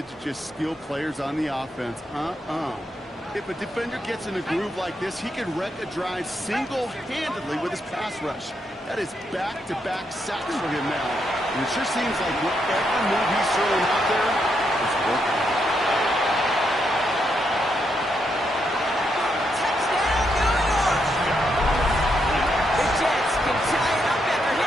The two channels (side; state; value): both; normal; correlation 0.79